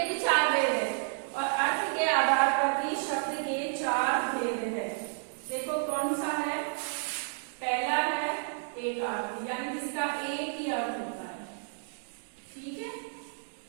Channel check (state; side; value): silent; left; digital silence